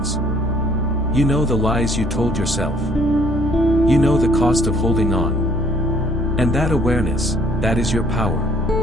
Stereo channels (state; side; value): normal; both; correlation 0.61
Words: You know the lies you told yourself. You know the cost of holding on. And that awareness, that is your power.